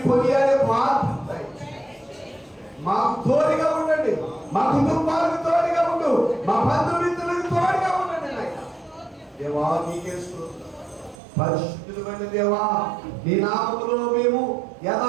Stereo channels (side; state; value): left; drops out; at 11.2 s